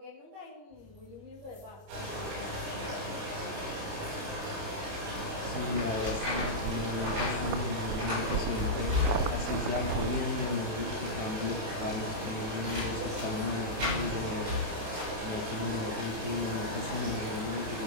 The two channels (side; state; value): left; late; 27 ms